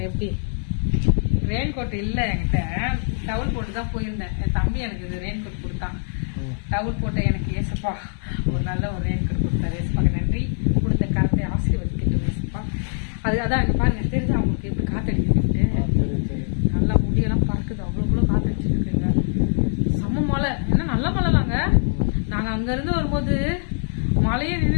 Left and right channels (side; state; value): right; silent; 63 dB below the other